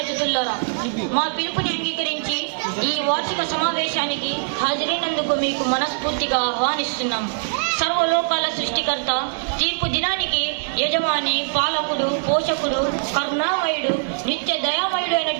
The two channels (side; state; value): left; silent; digital silence